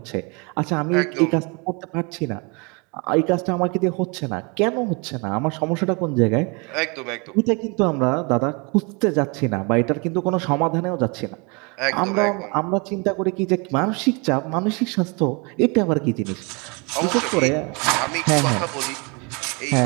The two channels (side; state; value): left; quieter; 30.9 dB